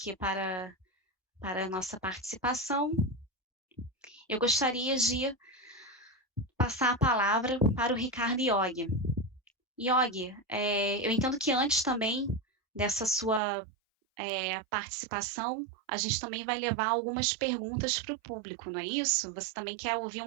para a nossa participação, eu gostaria de passar a palavra para o Ricardo Iog. Iog, eu entendo que antes também dessa sua participação, a gente também vai levar algumas perguntas para o público, não é isso? Você também quer ouvir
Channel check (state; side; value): drops out; left; at 13.4 s